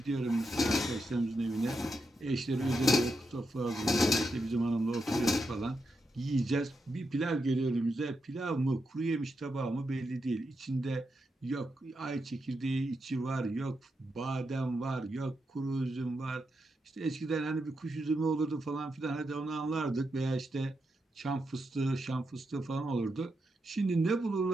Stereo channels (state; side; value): normal; both; correlation 0.85